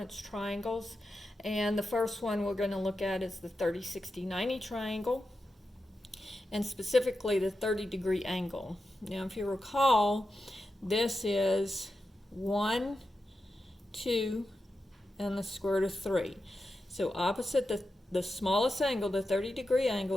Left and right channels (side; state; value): both; normal; correlation 0.90